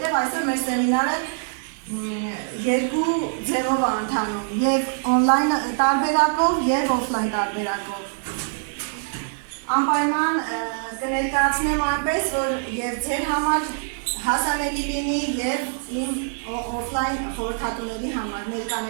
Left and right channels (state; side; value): silent; left; digital silence